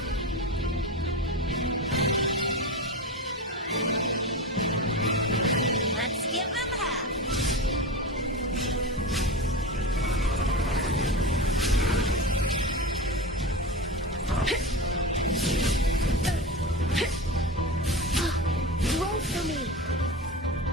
Let's give them half. Roll for me.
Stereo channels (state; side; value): normal; both; correlation 0.24